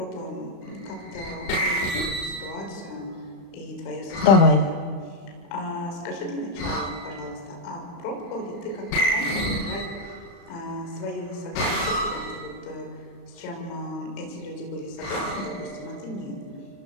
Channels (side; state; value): right; late; 35 ms